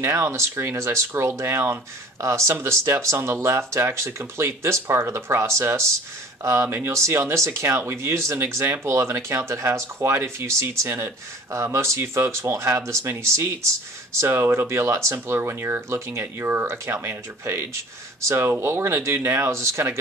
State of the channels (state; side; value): normal; both; correlation 0.46